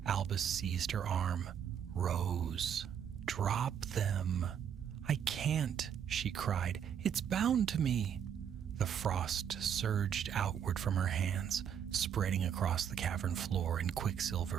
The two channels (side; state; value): left; quieter; 8.5 dB